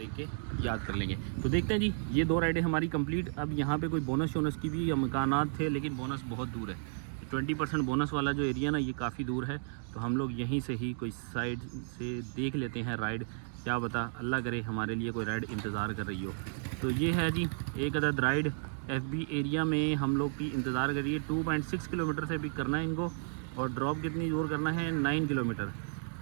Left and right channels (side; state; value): left; silent; digital silence